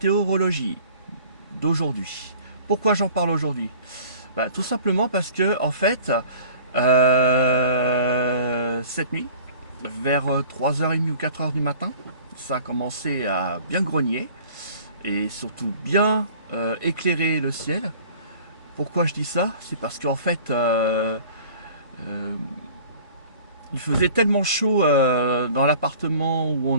d'aujourd'hui. Pourquoi j'en parle aujourd'hui? Tout simplement parce que, en fait, cette nuit, vers 3h30 ou 4h du matin, ça a commencé à bien grogner et surtout bien éclairer le ciel. Pourquoi je dis ça? C'est parce qu'en fait, euh, il faisait tellement chaud dans l'appartement où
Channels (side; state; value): both; inverted; correlation -0.48